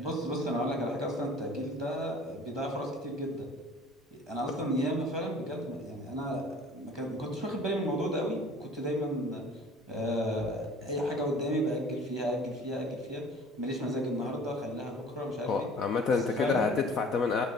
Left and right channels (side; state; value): both; normal; correlation 0.48